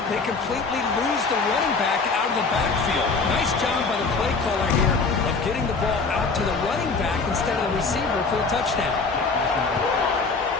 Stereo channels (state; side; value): quieter; right; 4.3 dB